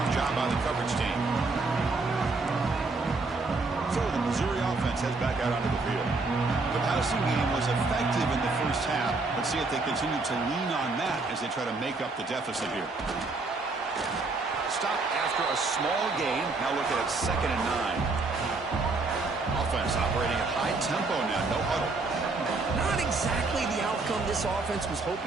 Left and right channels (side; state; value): left; quieter; 3.7 dB